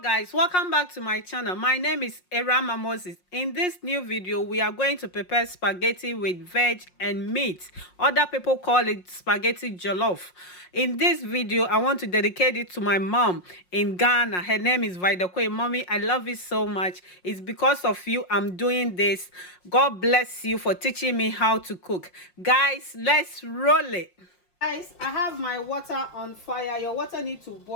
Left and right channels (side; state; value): right; late; 5.6 ms